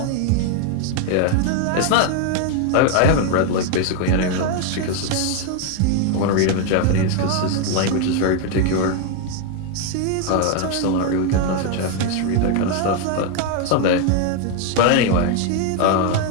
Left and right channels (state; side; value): different; both; correlation 0.01